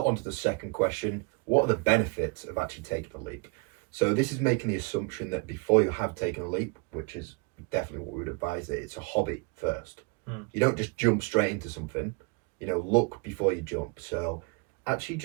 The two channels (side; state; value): left; quieter; 31.2 dB